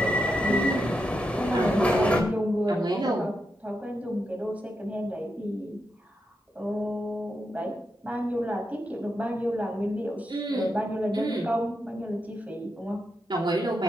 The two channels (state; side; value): normal; both; correlation 0.85